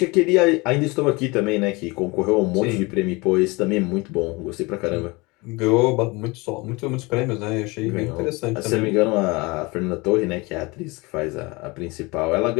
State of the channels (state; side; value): quieter; right; 25.1 dB